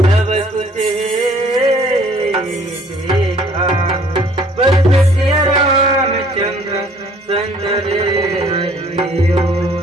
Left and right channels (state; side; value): normal; both; correlation 0.57